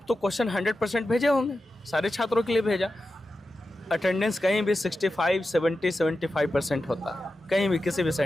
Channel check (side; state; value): both; normal; correlation 0.91